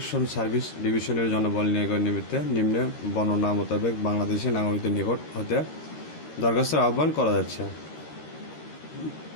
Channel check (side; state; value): right; late; 13 ms